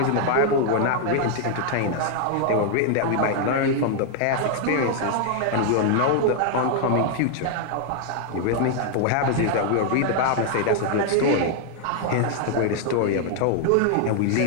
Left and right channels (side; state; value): both; different; correlation 0.00